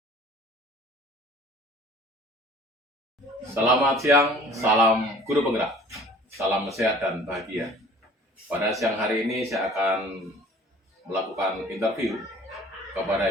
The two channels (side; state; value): both; normal; correlation 0.49